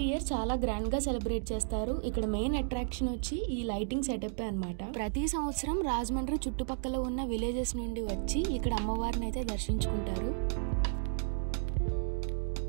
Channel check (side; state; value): left; silent; digital silence